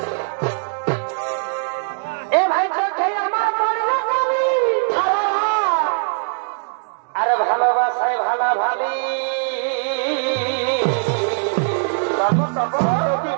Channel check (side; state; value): left; silent; digital silence